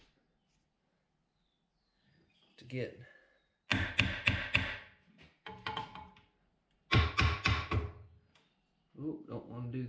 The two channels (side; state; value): both; identical; correlation 1.00